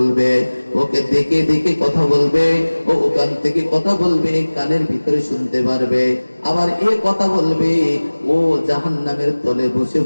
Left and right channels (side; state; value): both; inverted; correlation -1.00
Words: ওকে দেখে দেখে কথা বলবে, ও ওখান থেকে কথা বলবে, কানের ভিতরে শুনতে পারবে। আবার এ কথা বলবে, ও জাহান্নামের তলে বসে